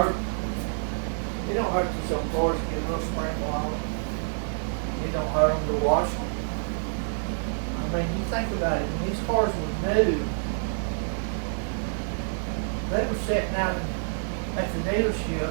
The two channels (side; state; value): left; silent; 60 dB below the other